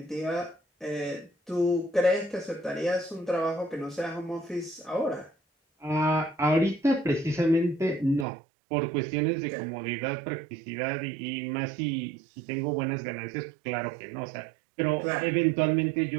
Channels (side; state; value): left; drops out; at 8.2 s